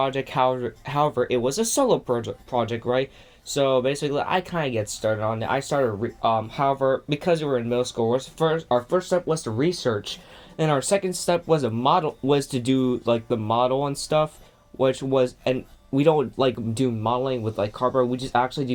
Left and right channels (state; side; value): identical; both; correlation 1.00